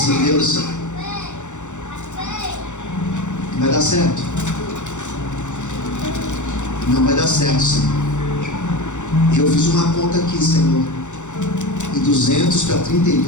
Deus, vai dar certo. Não vai dar certo, Senhor. E eu fiz uma conta aqui, Senhor. E 200 para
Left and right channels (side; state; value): right; late; 0.85 ms